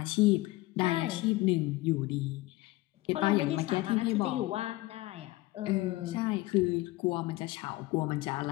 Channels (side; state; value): right; quieter; 19.5 dB